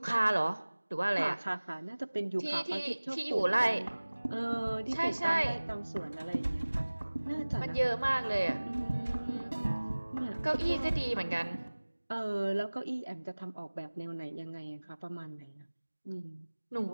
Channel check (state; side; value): inverted; both; correlation -1.00